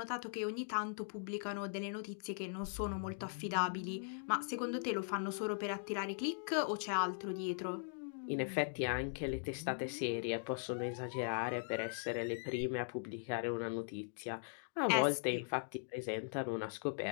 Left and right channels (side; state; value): right; silent; digital silence